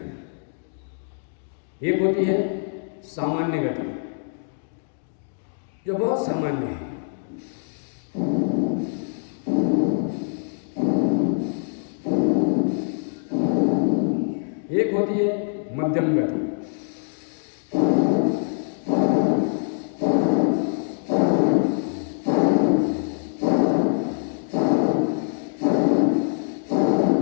एक होती है सामान्य गति, जो बहुत सामान्य है। एक होती है मध्यम गति।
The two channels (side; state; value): right; silent; digital silence